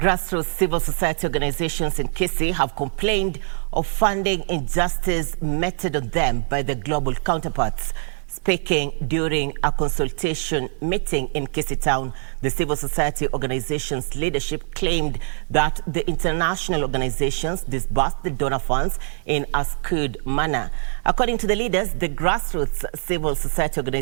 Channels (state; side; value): silent; left; digital silence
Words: civil society organizations in Kisii have complained of funding injustice meted on them by their global counterparts. Speaking during a consultation meeting in Kisii town, the civil society organizations leadership claimed that the international organizations disbursed the donor funds in a skewed manner. According to the leaders, the grassroots civil society